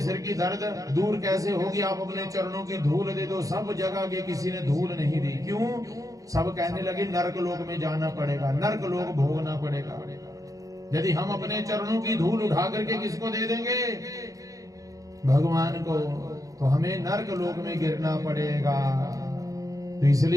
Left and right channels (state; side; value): late; left; 0.17 ms